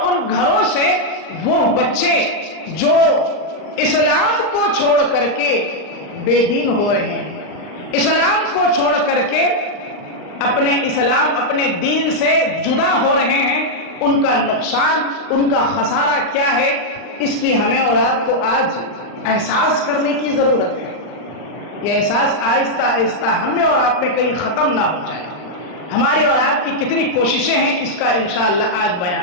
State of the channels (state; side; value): late; right; 39 ms